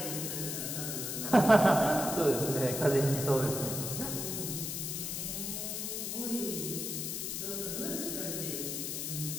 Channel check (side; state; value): left; noise; hiss, 3 dB below the sound